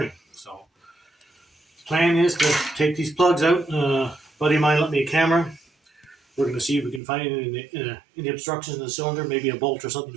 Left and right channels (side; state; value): left; drops out; at 7.0 s